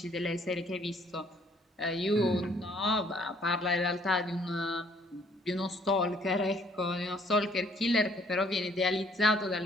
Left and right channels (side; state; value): both; normal; correlation 0.62